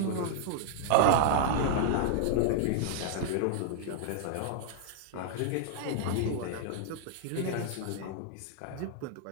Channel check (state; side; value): different; both; correlation -0.01